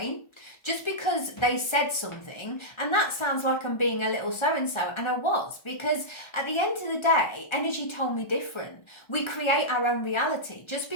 Just because they said something, and that sounds like I'm being a little so-and-so, and I was, because at the end of the day, energy told me different. We create our own reality. Just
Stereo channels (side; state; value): right; late; 1.3 ms